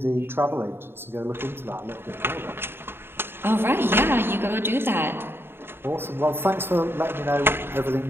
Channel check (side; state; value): left; late; 0.11 ms